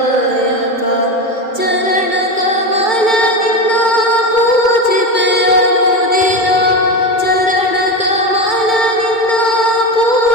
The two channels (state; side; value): late; right; 2.2 ms